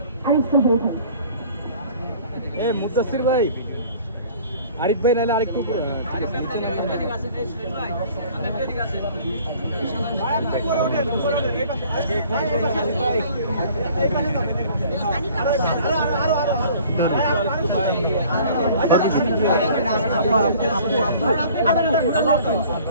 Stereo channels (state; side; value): inverted; both; correlation -0.51